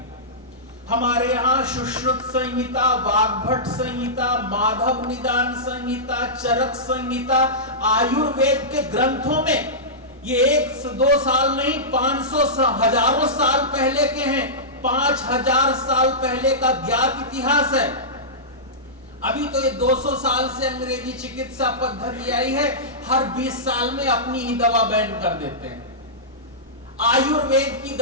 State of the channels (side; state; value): both; normal; correlation -0.16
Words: हमारे यहाँ सुश्रुत संहिता, वाग्भट संहिता, माधव निदान संहिता, चरक संहिता, आयुर्वेद के ग्रंथों में ये 1-2 साल नहीं, 500 हजारों साल पहले के हैं। 5000 साल पहले का ज्ञात इतिहास है। अभी तो ये 200 साल से अंग्रेजी चिकित्सा पद्धति आई है, हर 20 साल में अपनी ही दवा बैन कर देते हैं। आयुर्वेद की